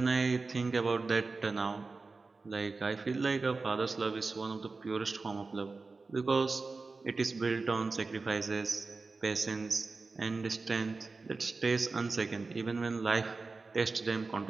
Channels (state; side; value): quieter; left; 3.9 dB